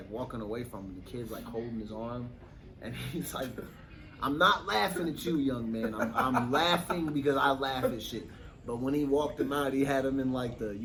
walking away from him. The kid's like holding his arm, and he's like, "I'm not laughing at you, young man. I'm laughing because I laugh at shit." But when he walked him out, he had him in like the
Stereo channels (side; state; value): both; identical; correlation 1.00